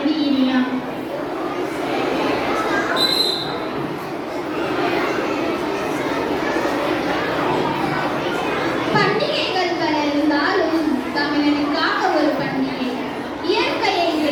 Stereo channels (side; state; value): both; identical; correlation 1.00